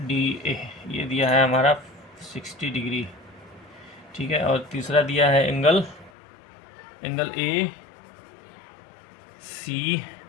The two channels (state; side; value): drops out; right; at 6.1 s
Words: ये दिया है हमारा 60 डिग्री, ठीक है। और तीसरा दिया है एंगल ACB,